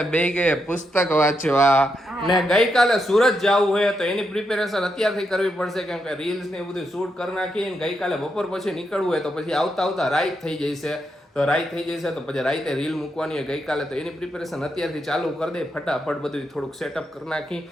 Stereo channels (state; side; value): normal; both; correlation 0.82